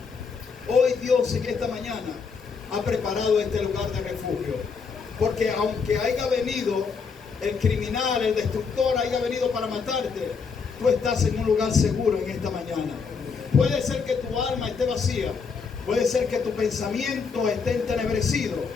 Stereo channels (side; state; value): right; quieter; 5.4 dB